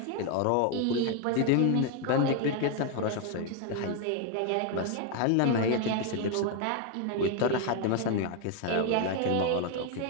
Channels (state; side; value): different; both; correlation 0.01